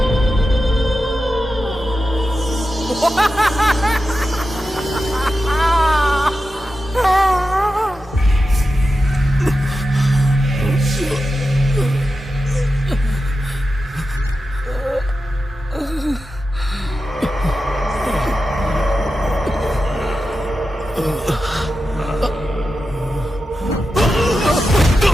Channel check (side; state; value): both; normal; correlation 0.90